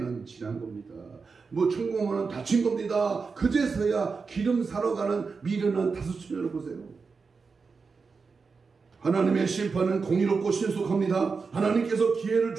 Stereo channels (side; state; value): left; quieter; 4.9 dB